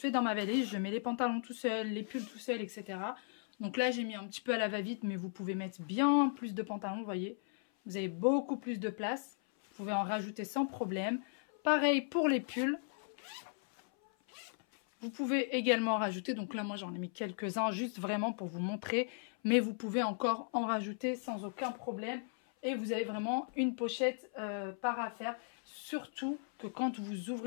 dans ma valise. Je mets les pantalons tout seul, les pulls tout seul, etc. Donc là, j'ai mis un petit peu à la va-vite, mais vous pouvez mettre bien plus de pantalons, vous voyez. Vous avez beaucoup plus de place. Vous pouvez en rajouter sans problème. Pareil pour les pulls. Vous pouvez également en rajouter. Donc là, moi, j'en ai mis quelques-uns juste vraiment pour vous montrer. Mais vous pouvez encore en rajouter sans aucun problème. Et vous avez vraiment une pochette par affaire. Surtout que quand vous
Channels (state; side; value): silent; right; 53 dB below the other